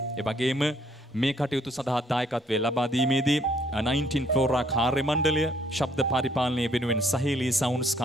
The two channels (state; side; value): normal; both; correlation 0.66